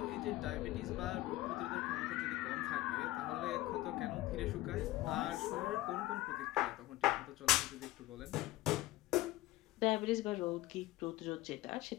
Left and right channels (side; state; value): right; quieter; 17.3 dB